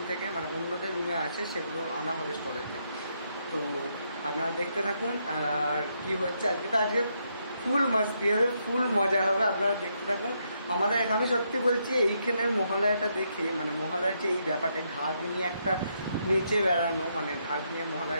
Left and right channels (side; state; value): both; inverted; correlation -0.78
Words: থেকে, মানে অন্যদের রুমে আছে সেগুলো আনা হবে স্টলেতে। তো আপনারা দেখতে থাকুন আর কী হচ্ছে। আজকে ফুল মাস্তি হবে, ফুল মজা হবে, আপনারা দেখতে থাকুন। আমাদের আমি সত্যি বলছি এইখানের মহালয়াটা দেখে, মানে মহালয়ার যে এই ব্যাপারটা, ঢাক নিয়ে একটা নেচে বেড়ানো, মানে ঢাক নিয়ে